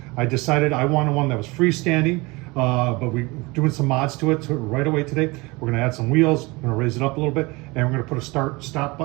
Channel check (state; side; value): quieter; left; 24.3 dB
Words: I decided I wanted one that was freestanding, but we're doing some mods to it right away today. We're going to add some wheels, we're going to raise it up a little bit, and we're going to put a start-stop